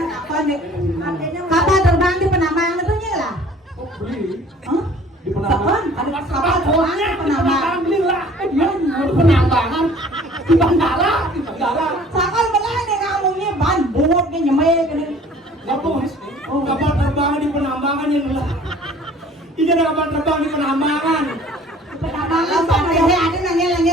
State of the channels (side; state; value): both; normal; correlation 0.51